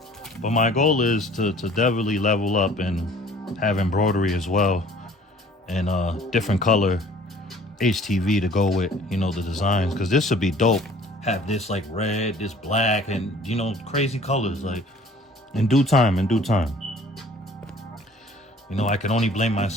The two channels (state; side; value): normal; both; correlation 0.52